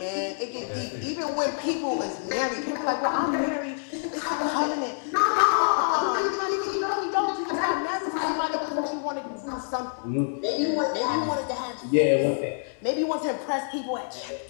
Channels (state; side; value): silent; right; digital silence